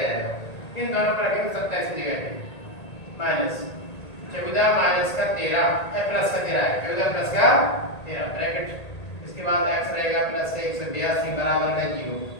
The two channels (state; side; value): late; right; 1.8 ms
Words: इन दोनों पर रखेंगे 27 की जगह पे माइनस 14 माइनस का 13 प्लस का 13 है, 14 प्लस का 13 ब्रैकेट, इसके बाद x रहेगा प्लस 182 बराबर में 0।